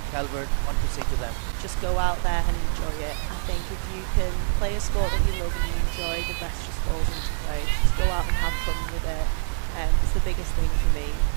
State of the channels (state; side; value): silent; left; digital silence